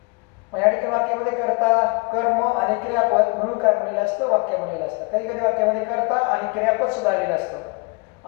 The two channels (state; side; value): quieter; right; 29.0 dB